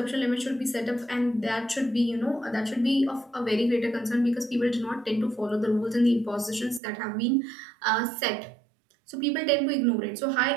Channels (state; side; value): drops out; left; at 6.8 s